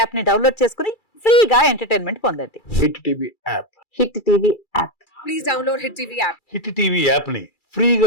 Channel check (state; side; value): late; right; 2.3 ms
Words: యాప్ ని డౌన్లోడ్ చేసుకుని ఫ్రీగా ఎంటర్టైన్మెంట్ పొందండి. Hit TV app, hit TV app, please download hit TV app. Hit TV app ని ఫ్రీగా